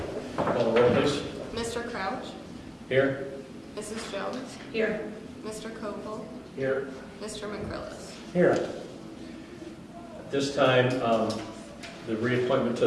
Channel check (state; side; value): identical; both; correlation 1.00